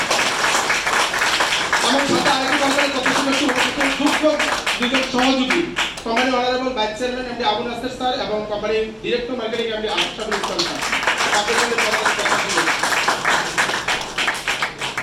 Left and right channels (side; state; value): both; identical; correlation 1.00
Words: আমার সাথে আরেকটি কোম্পানির প্রত্যাশা করছি যোগ্য দুজন সহযোগী company honourable vice chairman MD Abu Naser sir এবং কোম্পানির director marketing MD Ashraful Islam sir. আপনাদের